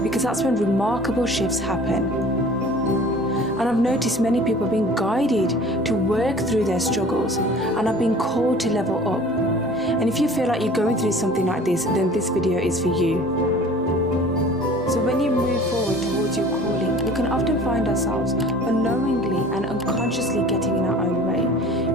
because that's when remarkable shifts happen. And I've noticed many people are being guided to work through their struggles and are being called to level up. And if you feel like you're going through something like this, then this video is for you. So when you move forward towards your calling, we can often find ourselves unknowingly and unconsciously getting in our own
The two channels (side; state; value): both; normal; correlation 0.46